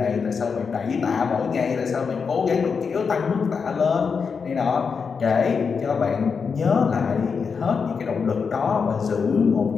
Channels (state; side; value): quieter; right; 5.7 dB